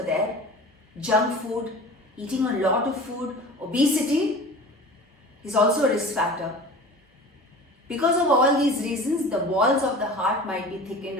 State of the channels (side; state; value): both; normal; correlation 0.38